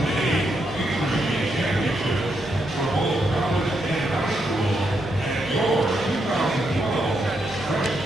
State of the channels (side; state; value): left; noise; hum, 17 dB below the sound